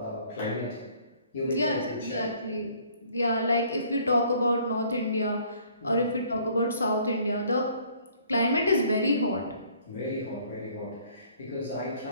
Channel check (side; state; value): both; inverted; correlation -0.59